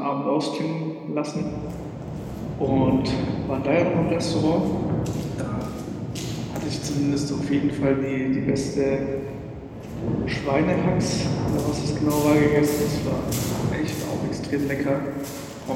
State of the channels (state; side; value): identical; both; correlation 1.00